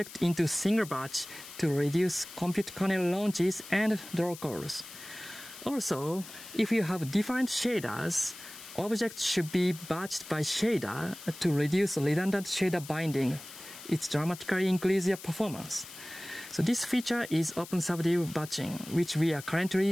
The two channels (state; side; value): noise; left; hiss, 15 dB below the sound